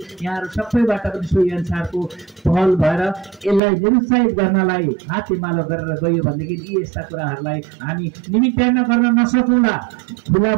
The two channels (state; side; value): drops out; left; at 3.6 s